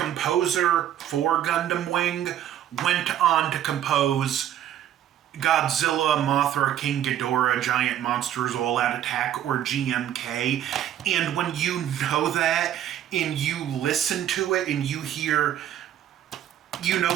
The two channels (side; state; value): left; quieter; 11.2 dB